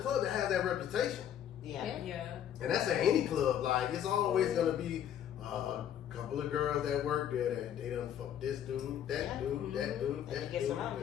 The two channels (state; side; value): quieter; right; 10.0 dB